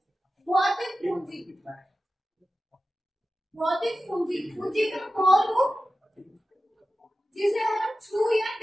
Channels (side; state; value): both; normal; correlation 0.93